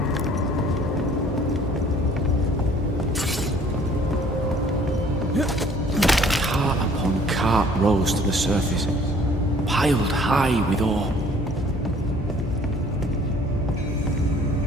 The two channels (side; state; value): both; normal; correlation 0.55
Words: Cart upon cart rose to the surface, piled high with ore.